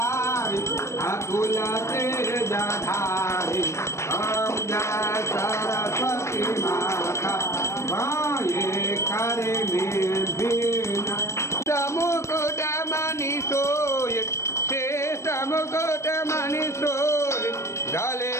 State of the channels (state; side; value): late; right; 0.13 ms